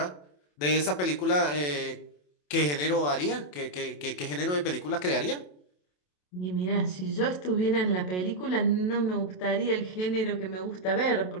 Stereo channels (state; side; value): late; right; 27 ms